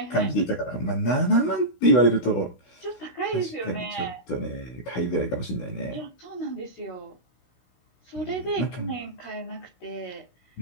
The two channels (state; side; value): late; right; 16 ms